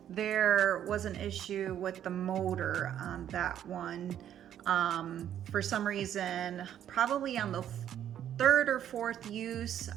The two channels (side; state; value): left; quieter; 10.4 dB